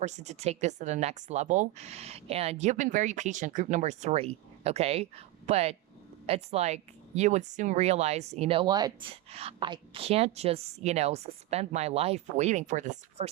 to take this to the next level. And you've been very patient, group number 3, okay? But it's like you would soon realize, you know what? I can't just, suspend my life waiting for this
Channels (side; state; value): left; quieter; 16.2 dB